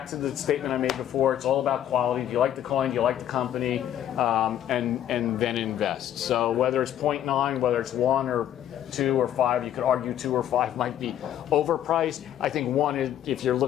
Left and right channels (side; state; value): right; quieter; 11.0 dB